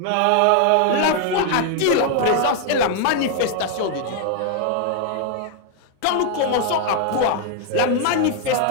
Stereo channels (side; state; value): both; different; correlation 0.00